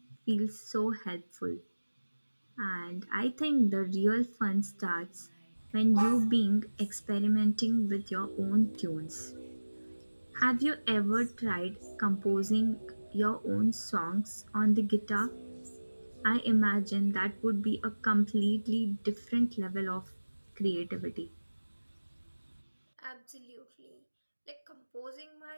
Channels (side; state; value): both; inverted; correlation -1.00